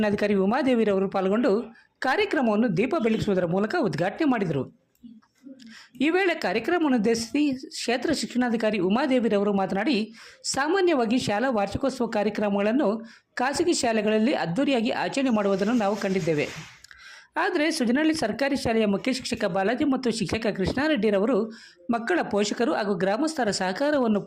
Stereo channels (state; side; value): identical; both; correlation 1.00